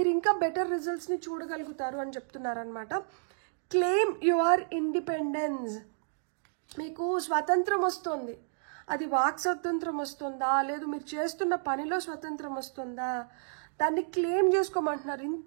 ఇంకా బెటర్ రిజల్ట్స్ని చూడగలుగుతారు అని చెప్తున్నారనమాట. Claim your independence. మీకు స్వతంత్రం వస్తుంది. అది వాక్ స్వతంత్రం వస్తుందా, లేదు మీరు చేస్తున్న పనిలో స్వతంత్రం వస్తుందా, దాన్ని క్లెయిమ్ చేసుకోమంటున్నారు.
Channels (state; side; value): silent; left; digital silence